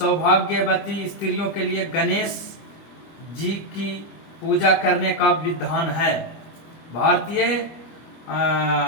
स्त्रियों के लिए गणेश जी की पूजा करने का विधान है। भारतीय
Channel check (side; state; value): right; late; 25 ms